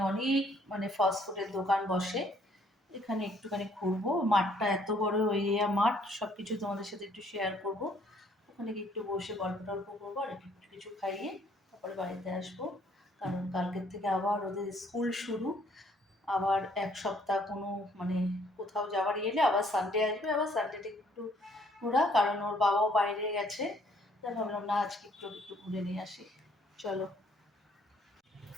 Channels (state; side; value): normal; both; correlation 0.64